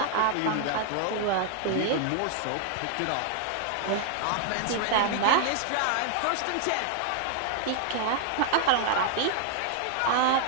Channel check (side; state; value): both; different; correlation 0.00